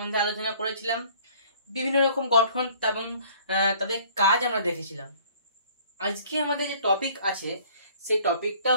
আলোচনা করেছিলাম। বিভিন্ন রকম গঠন এবং তাদের কাজ আমরা দেখেছিলাম। আজকে আমাদের যে টপিক আছে সেই টপিকটা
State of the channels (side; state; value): both; inverted; correlation -0.54